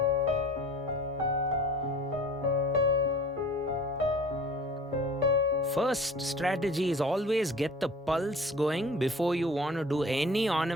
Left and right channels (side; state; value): both; normal; correlation 0.43